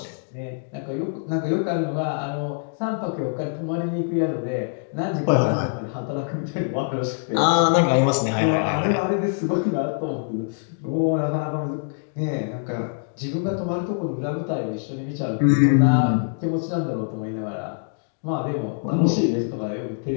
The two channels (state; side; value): silent; right; digital silence